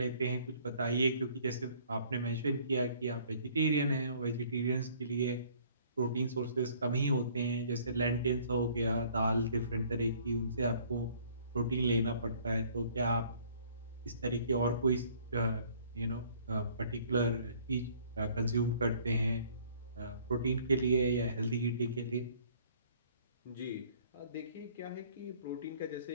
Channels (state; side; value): inverted; both; correlation -0.57